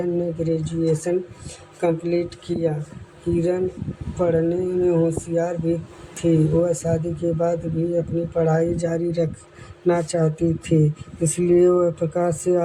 ने ग्रेजुएशन कंप्लीट किया। किरण पढ़ने में होशियार भी थी। वह शादी के बाद भी अपनी पढ़ाई जारी रखना चाहती थी, इसलिए वह प्रकाश से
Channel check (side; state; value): both; identical; correlation 1.00